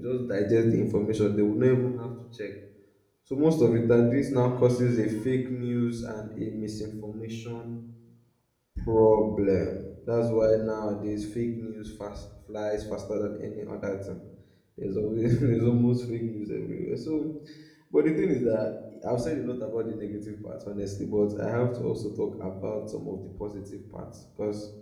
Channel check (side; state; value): both; identical; correlation 1.00